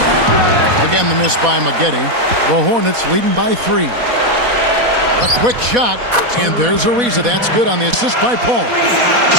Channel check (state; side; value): late; left; 4.1 ms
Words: Again, the miss by Maggette. The Hornets leading by 3. A quick shot, and there's Ariza. That's good on the assist by Paul.